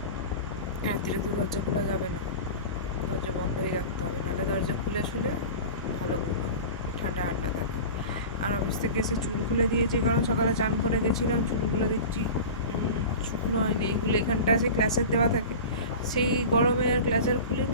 রাত্রে তো দরজা খোলা যাবে না, দরজা বন্ধই রাখতে হবে, নাহলে দরজা খুলে শুলে ভালো ঠান্ডা ঠান্ডা থাকে। আর অফিস থেকে এসে চুল খুলে দিয়েছি, কারণ সকালে চান করে গেছিলাম, চুলগুলো দেখছি শুকনো হয়নি। এইগুলো এখানটা আছে ক্লাসের দেওয়া থাকে, সেই গরমে আর ক্লাচার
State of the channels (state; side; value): inverted; both; correlation -0.33